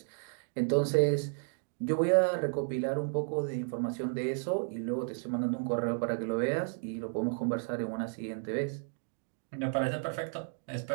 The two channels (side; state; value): left; silent; 56 dB below the other